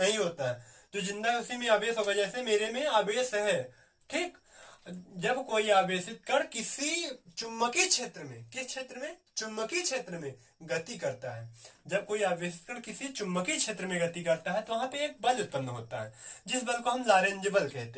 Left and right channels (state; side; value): identical; both; correlation 1.00